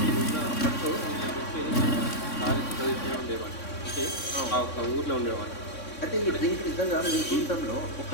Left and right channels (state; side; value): late; right; 3.6 ms